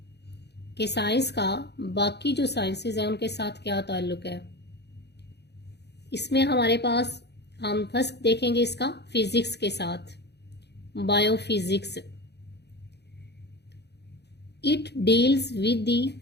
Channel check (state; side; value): late; right; 0.49 ms